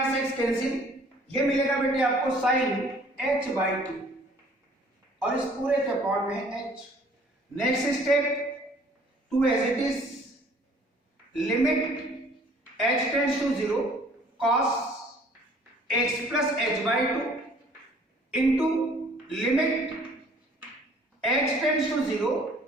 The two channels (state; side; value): normal; both; correlation 0.55